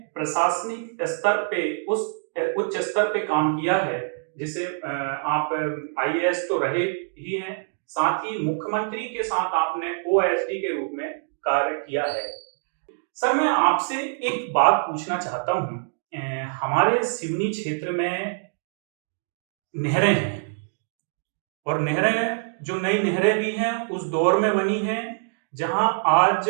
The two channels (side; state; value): left; silent; digital silence